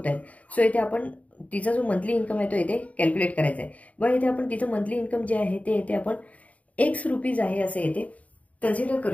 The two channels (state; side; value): late; right; 0.069 ms